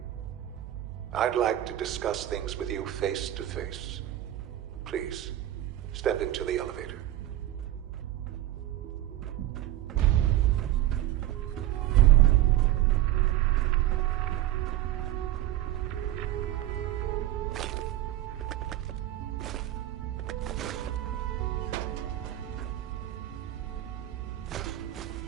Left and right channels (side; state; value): left; quieter; 13.7 dB